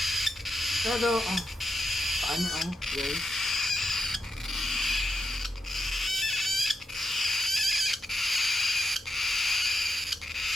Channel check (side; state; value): both; normal; correlation 0.85